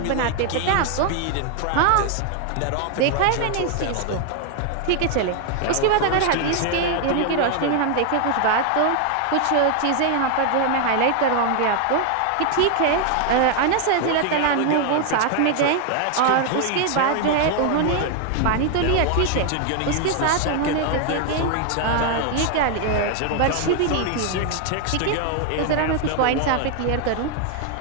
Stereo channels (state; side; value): different; both; correlation 0.00